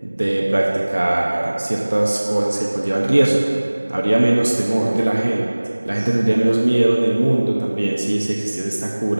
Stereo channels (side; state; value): both; inverted; correlation -1.00